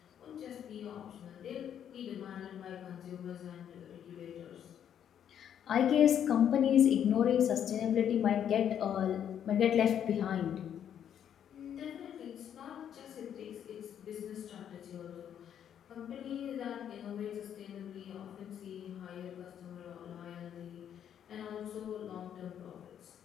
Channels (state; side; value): quieter; right; 9.3 dB